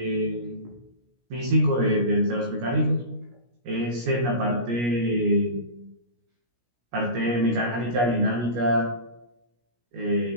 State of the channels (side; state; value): left; late; 17 ms